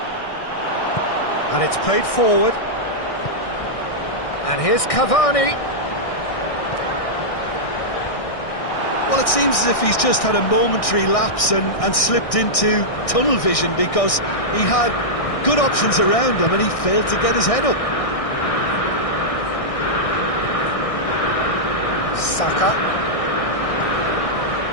And it's played forward. And here's Cavani. Well, it seems as if he's just had a momentary lapse and slipped into tunnel vision, because he had good options around him and he failed to get his head up. Saka.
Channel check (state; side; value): late; right; 1.6 ms